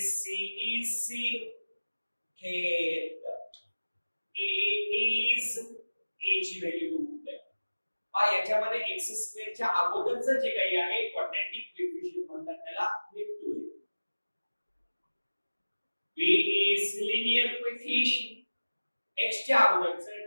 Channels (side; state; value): both; inverted; correlation -1.00